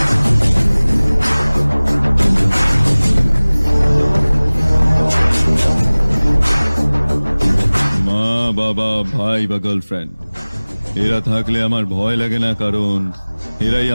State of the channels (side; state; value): both; inverted; correlation -1.00